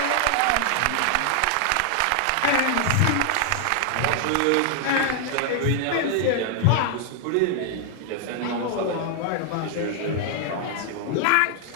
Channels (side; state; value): both; different; correlation 0.00